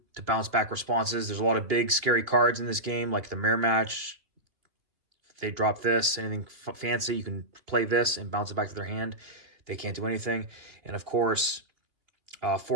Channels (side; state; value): left; late; 2.8 ms